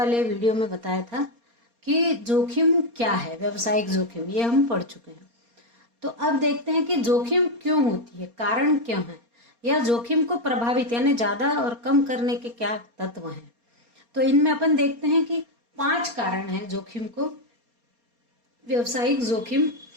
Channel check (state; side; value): late; left; 4.3 ms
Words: वीडियो में बताया था कि जोखिम क्या है। व्यवसायिक जोखिम ये हम पढ़ चुके हैं। तो अब देखते हैं कि जोखिम क्यों होती है, कारण क्यों है, या जोखिम को प्रभावित यानी ज्यादा और कम करने के क्या तत्व हैं। तो इनमें अपन देखते हैं कि 5 कारण हैं जोखिम को, व्यवसायिक जोखिम